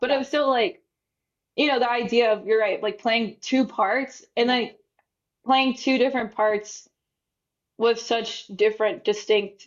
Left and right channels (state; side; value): identical; both; correlation 1.00